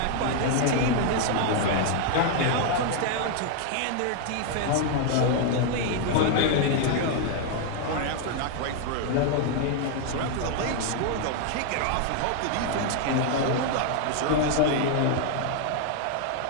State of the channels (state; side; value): different; both; correlation 0.00